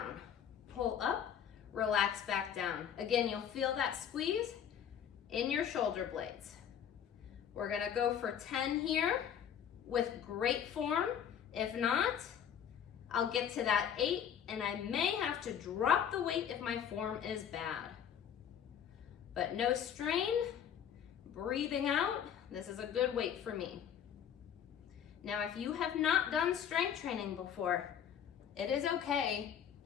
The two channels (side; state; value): right; quieter; 8.9 dB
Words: Pull up, relax back down. Again, you'll feel that squeeze in your shoulder blades. We're gonna go for 10 here with great form. If not, I'll get to that 8, and I may have to drop the weight if my form is bad. But no strain, breathing out. This is a good weight for me. Now, if you have not done strength training before, it is okay